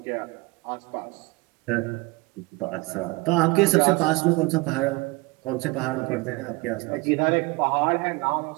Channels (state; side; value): quieter; left; 24.4 dB